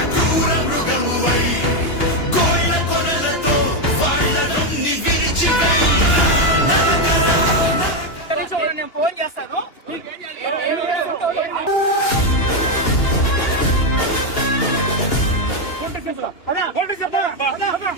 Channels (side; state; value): right; late; 2.9 ms